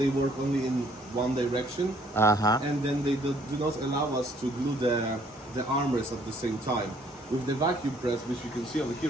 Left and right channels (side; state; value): both; normal; correlation 0.63